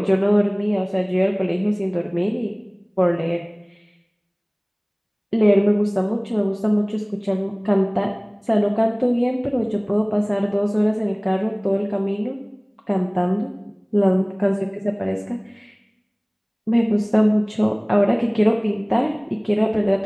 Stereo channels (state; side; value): identical; both; correlation 1.00